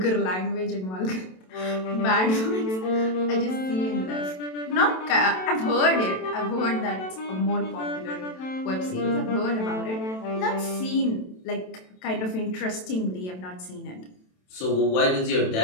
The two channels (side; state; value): right; late; 27 ms